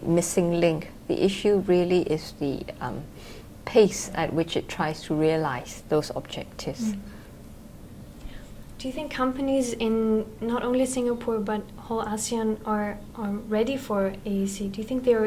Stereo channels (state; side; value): identical; both; correlation 1.00